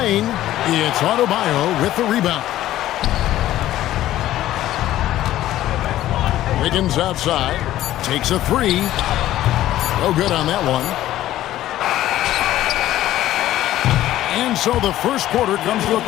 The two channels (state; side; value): quieter; right; 13.9 dB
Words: It's Adebayo with the rebound. Wiggins outside. Takes a three. No good on that one. And so the first quarter comes to a